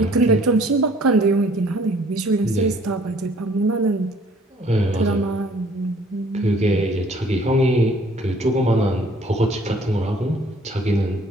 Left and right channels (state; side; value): normal; both; correlation 0.57